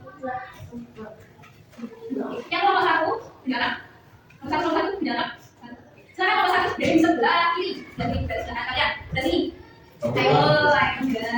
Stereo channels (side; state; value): both; identical; correlation 1.00